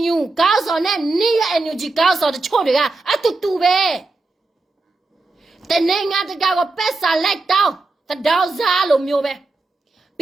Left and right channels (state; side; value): quieter; left; 3.4 dB